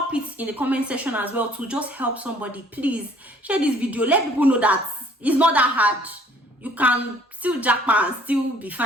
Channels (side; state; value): both; normal; correlation 0.58